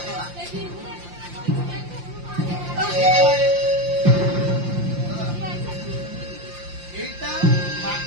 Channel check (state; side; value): late; left; 5.7 ms